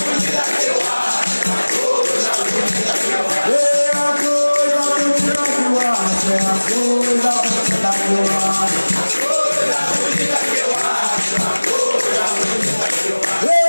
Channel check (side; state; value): both; inverted; correlation -1.00